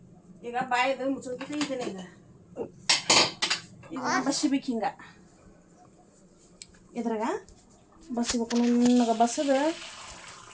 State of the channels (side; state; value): both; identical; correlation 1.00